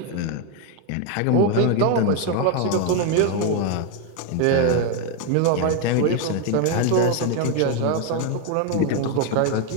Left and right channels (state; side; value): different; both; correlation 0.01